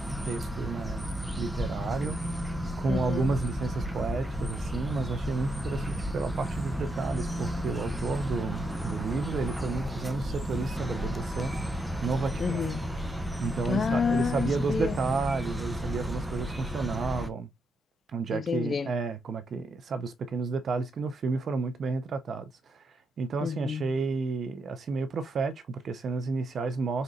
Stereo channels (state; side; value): normal; both; correlation 0.80